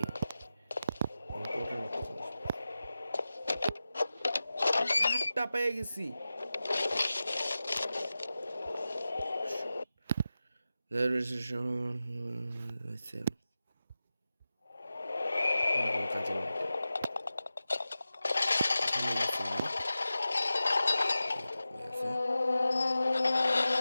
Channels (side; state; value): both; inverted; correlation -0.94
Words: পেয়ে গেছি। There is a show myself. কাজে